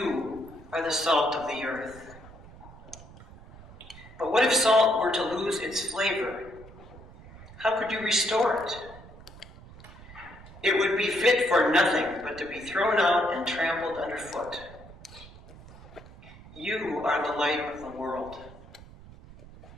are the salt of the earth. But what if salt were to lose its flavor? How could you restore it? It would be fit for nothing but to be thrown out and trampled underfoot. You are the light of the world.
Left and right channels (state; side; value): noise; right; rumble, 19 dB below the sound